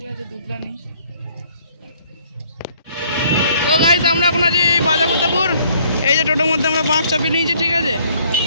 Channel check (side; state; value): both; inverted; correlation -0.62